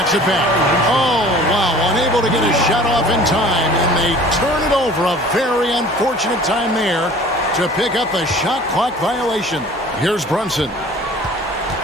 it back. Oh, wow. Unable able to get a shot off in time, and they turn it over. A very unfortunate time there to pick up a shot clock violation. Here's Brunson.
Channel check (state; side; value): noise; right; hum, 26 dB below the sound